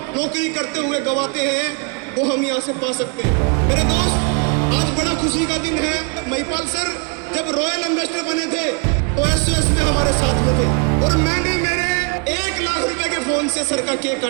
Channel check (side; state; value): left; quieter; 33.7 dB